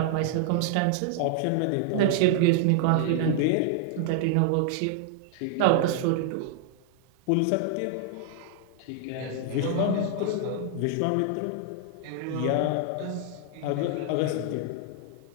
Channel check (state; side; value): different; both; correlation 0.00